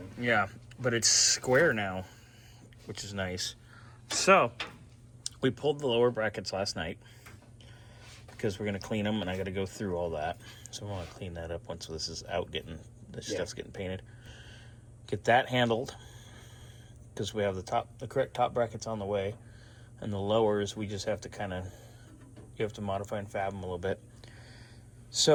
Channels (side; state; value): both; identical; correlation 1.00